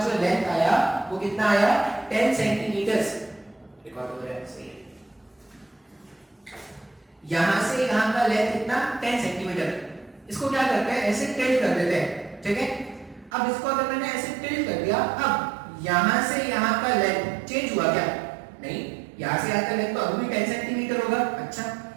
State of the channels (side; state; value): left; drops out; at 13.3 s